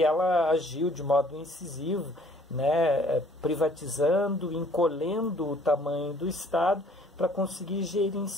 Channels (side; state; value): both; normal; correlation 0.57